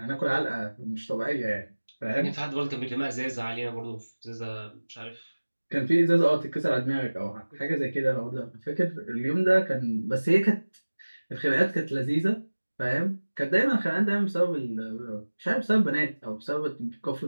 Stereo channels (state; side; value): inverted; both; correlation -1.00